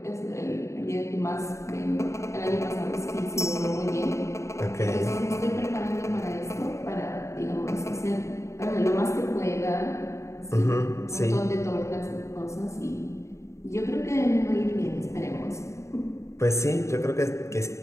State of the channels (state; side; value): late; right; 0.14 ms